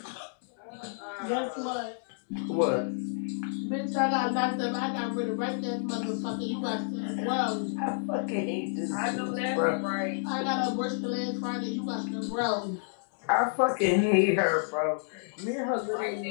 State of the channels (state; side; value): silent; right; digital silence